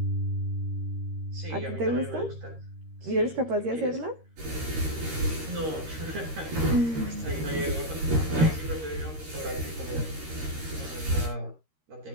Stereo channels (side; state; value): left; late; 13 ms